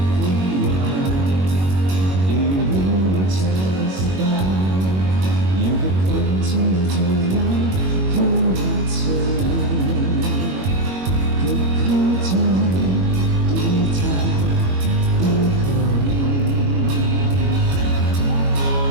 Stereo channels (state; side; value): late; left; 21 ms